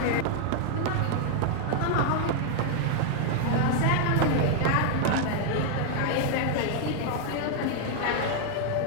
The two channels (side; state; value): both; different; correlation 0.00